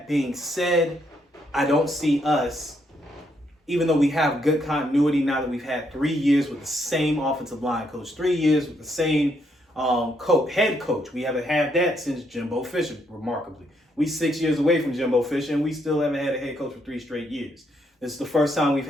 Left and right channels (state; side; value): normal; both; correlation 0.75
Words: being said, I don't see us, even though we have good continuity now that we've had 3 years with the same offensive line coach, 3 years with the same head coach. We haven't had that since Jimbo Fisher, remarkably. We 6 years away from Jimbo Fisher, and we still haven't had a head coach for 3 straight years. This is the first time we've